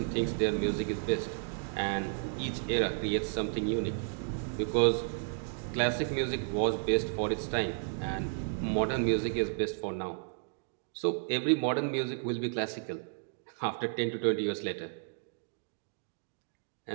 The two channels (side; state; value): left; silent; digital silence